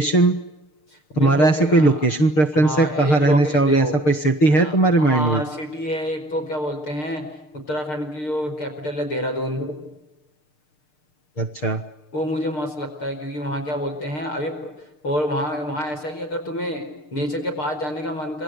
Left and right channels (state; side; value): late; right; 6.6 ms